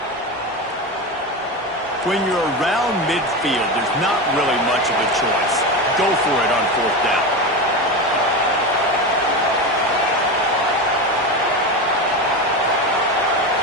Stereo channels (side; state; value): both; normal; correlation 0.20